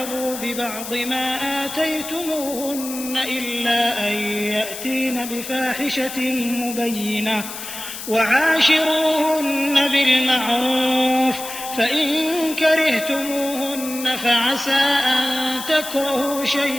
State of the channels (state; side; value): noise; left; hiss, 9 dB below the sound